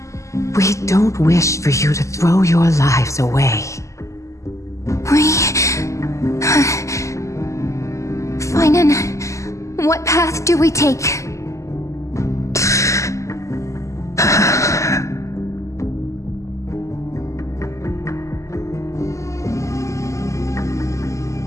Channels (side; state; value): right; late; 0.15 ms